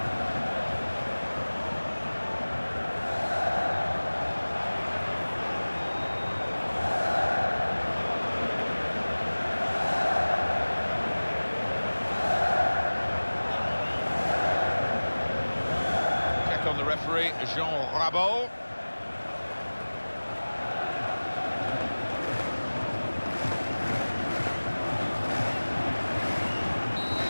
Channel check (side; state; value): both; inverted; correlation -1.00